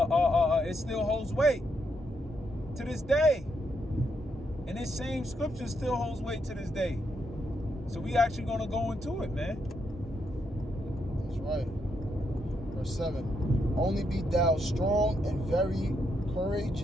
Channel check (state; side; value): normal; both; correlation 0.79